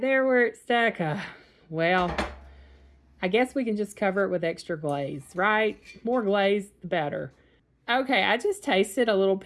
there where it's stuck? Well, I guess we can just cover it with extra glaze, right? More glaze, the better. Okay, I just tasted a little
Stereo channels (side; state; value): both; identical; correlation 1.00